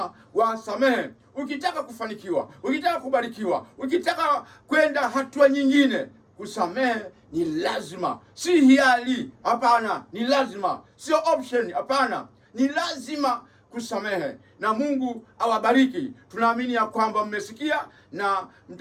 wasamehe. Ukitaka kufanikiwa, ukitaka kubarikiwa, ukitaka kwenda hatua nyingine, kusamehe ni lazima, si hiari. Hapana, ni lazima, sio option. Hapana, ni lazima kusamehe. Na Mungu awabariki. Tunaamini ya kwamba mmesikia na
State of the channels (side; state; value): both; identical; correlation 1.00